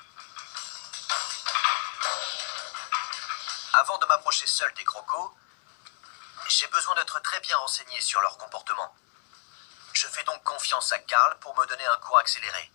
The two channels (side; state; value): right; silent; digital silence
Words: Avant de m'approcher seul des crocos, j'ai besoin d'être très bien renseigné sur leur comportement. Je fais donc confiance à Carl pour me donner un cours accéléré.